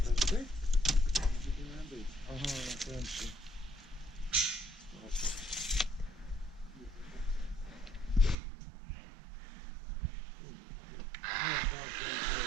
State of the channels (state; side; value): drops out; left; at 8.3 s